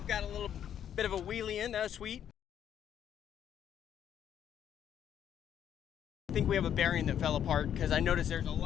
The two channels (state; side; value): quieter; right; 9.6 dB